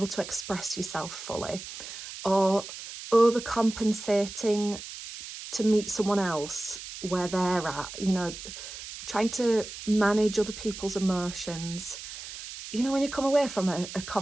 to express yourself fully, or overcompensating to meet someone else where they're at, trying to manage other people's emotions. When you come away from a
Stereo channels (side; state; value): right; noise; hiss, 11 dB below the sound